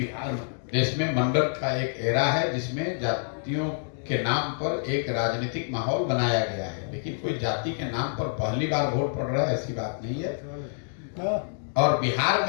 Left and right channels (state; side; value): silent; right; digital silence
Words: देश में मंडल का एक एरा है, जिसमें जातियों के नाम पर एक राजनीतिक माहौल बनाया गया है, लेकिन कोई जाति के नाम पर पहली बार वोट पड़ रहा है ऐसी बात नहीं है। और बिहार